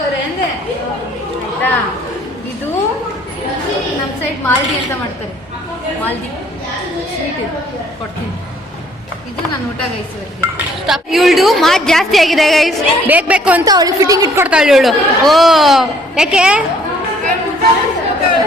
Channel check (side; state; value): both; normal; correlation 0.61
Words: ಅಂದೆ ಆಯ್ತಾ? ಇದು ನಮ್ಮ ಸೈಡ್ ಮಾಲ್ದಿ ಅಂತ ಮಾಡ್ತಾರೆ. ಮಾಲ್ದಿ ಸ್ವೀಟ್ ಇದು ಕೊಡ್ತೀನಿ. ಇದು ನಾನು ಊಟ ಗೈಸ್. ಇವಳು ಮಾತು ಜಾಸ್ತಿ ಆಗಿದೆ ಗೈಸ್. ಬೇಕು ಅಂತ ಅವಳು ಫಿಟ್ಟಿಂಗ್ ಇಟ್ಕೊಡ್ತಾಳೆ ಇವಳು. ಓ ಯಾಕೆ?